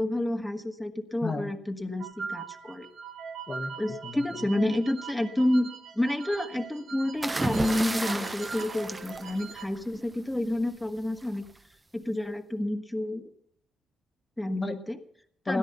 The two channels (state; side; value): normal; both; correlation 0.96